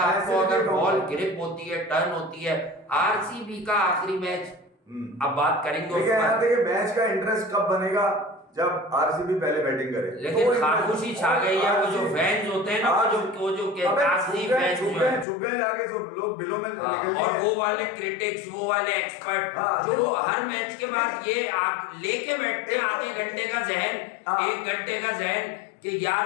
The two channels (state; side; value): drops out; right; at 15.2 s